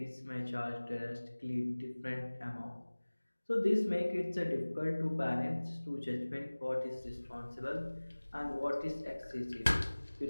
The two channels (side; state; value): both; inverted; correlation -1.00